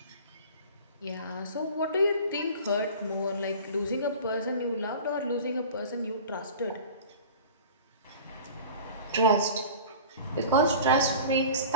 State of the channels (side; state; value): both; inverted; correlation -0.39